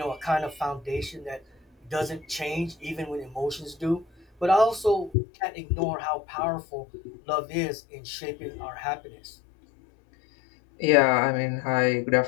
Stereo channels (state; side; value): drops out; right; at 5.2 s